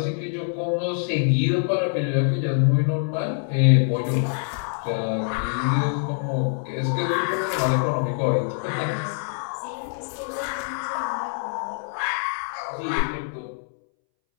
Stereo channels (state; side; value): silent; right; 62 dB below the other